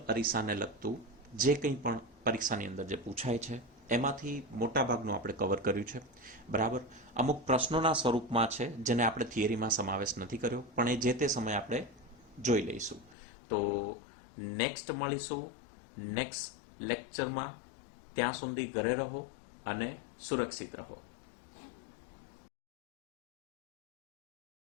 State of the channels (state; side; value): drops out; right; at 13.2 s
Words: અરીસાને લગતું જે કંઈ પણ પરીક્ષાની અંદર જે પૂછાય છે એમાંથી મોટાભાગનું આપણે કવર કર્યું છે. બરાબર, અમુક પ્રશ્નોના સ્વરૂપમાં છે જેને આપણે થિયરીમાં સમાવેશ નથી કર્યો, પણ એ જે તે સમયે આપણે જોઈ લઈશું. તો નેક્સ્ટ મળીશું નેક્સ્ટ લેક્ચરમાં. ત્યાં સુધી ઘરે રહો અને સુરક્ષિત રહો.